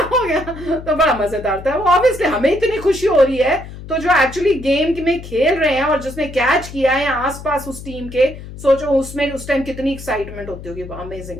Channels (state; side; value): noise; left; hum, 13 dB below the sound